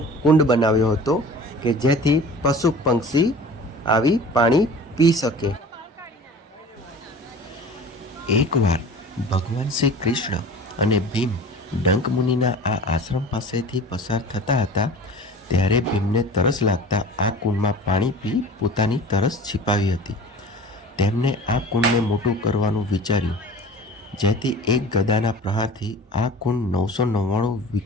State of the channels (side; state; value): both; normal; correlation 0.41